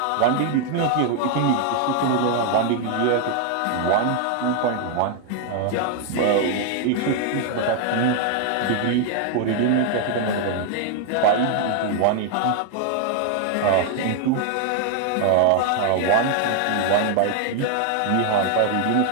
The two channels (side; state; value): both; different; correlation 0.00